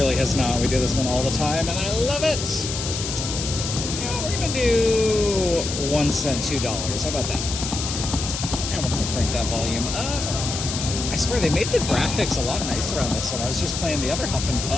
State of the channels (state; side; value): noise; left; hiss, 5 dB below the sound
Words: has not. We do this one all the time, and I love it. Yeah, we're gonna do 1 cent, $2. How about that? And we're gonna crank that volume up. I swear they made the graphics a lot nicer on this one. I was just playing the other Huff and